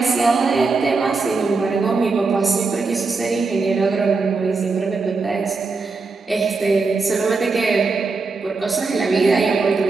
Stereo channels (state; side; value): quieter; left; 4.2 dB